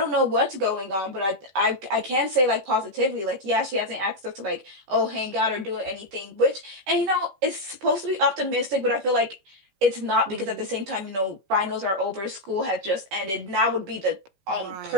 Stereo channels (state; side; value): late; left; 15 ms